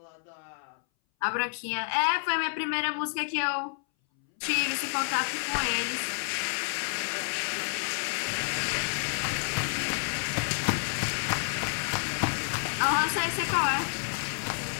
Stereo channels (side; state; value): right; silent; 58 dB below the other